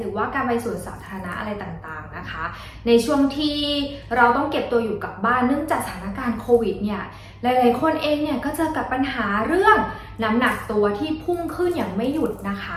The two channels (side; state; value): both; identical; correlation 1.00